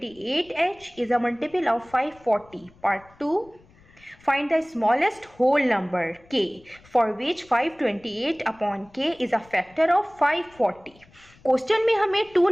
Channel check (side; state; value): left; noise; rumble, 28 dB below the sound